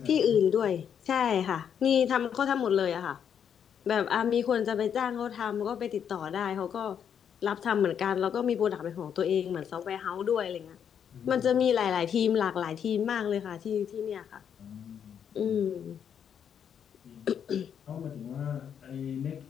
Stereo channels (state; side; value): quieter; right; 8.2 dB